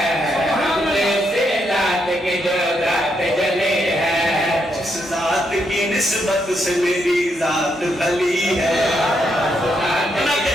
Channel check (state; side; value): normal; both; correlation 0.78